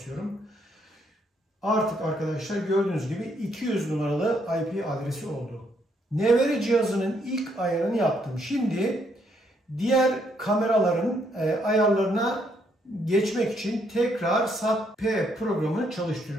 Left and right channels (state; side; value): normal; both; correlation 0.72